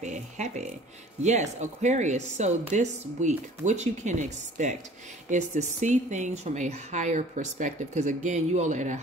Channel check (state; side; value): normal; both; correlation 0.49